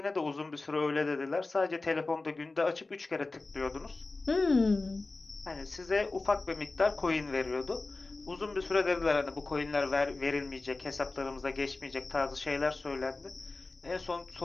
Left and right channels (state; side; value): quieter; right; 3.4 dB